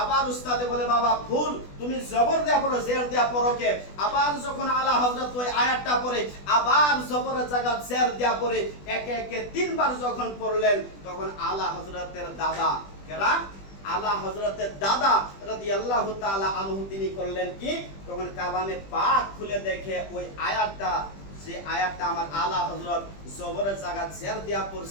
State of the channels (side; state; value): right; late; 20 ms